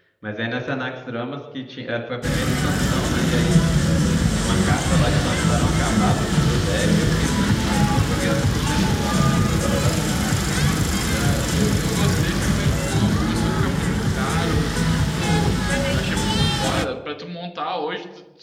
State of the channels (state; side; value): identical; both; correlation 1.00